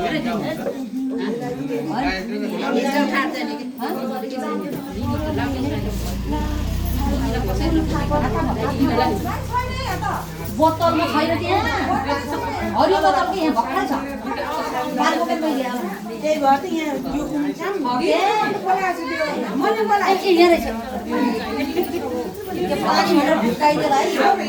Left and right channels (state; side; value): identical; both; correlation 1.00